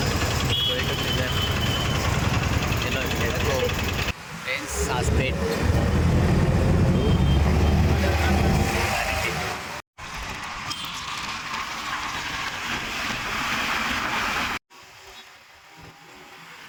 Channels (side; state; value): both; identical; correlation 1.00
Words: Going to Bidar. Hello, let's go. Friends, Saspet.